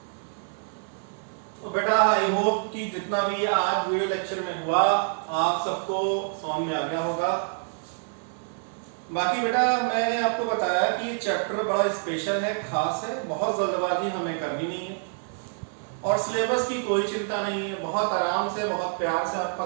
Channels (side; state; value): left; silent; 60 dB below the other